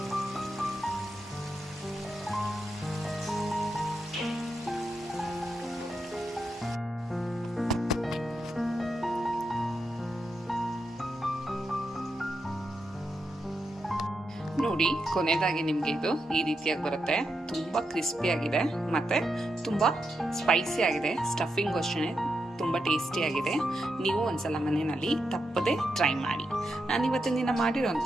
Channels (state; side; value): normal; both; correlation 0.85